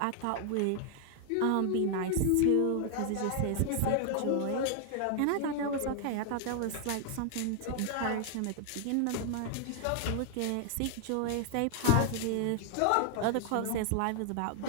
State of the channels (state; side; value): different; both; correlation 0.00